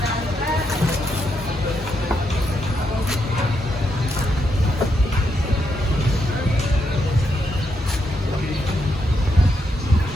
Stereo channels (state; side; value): normal; both; correlation 0.80